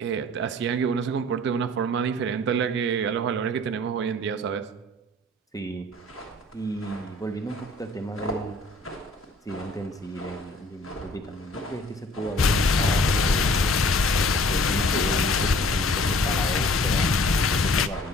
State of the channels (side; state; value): both; normal; correlation 0.51